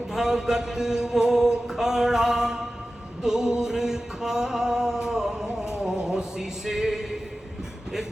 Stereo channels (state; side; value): normal; both; correlation 0.95